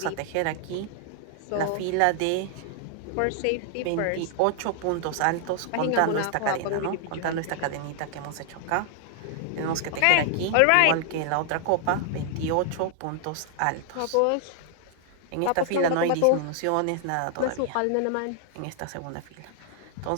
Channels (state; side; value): different; both; correlation 0.00